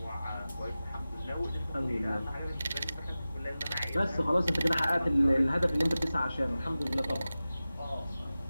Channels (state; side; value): inverted; both; correlation -0.96